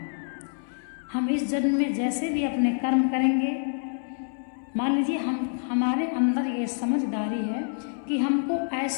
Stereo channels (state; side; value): silent; right; 60 dB below the other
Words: हम इस जन्म में जैसे भी अपने कर्म करेंगे, मान लीजिए हमारे अंदर ये समझदारी है कि हमको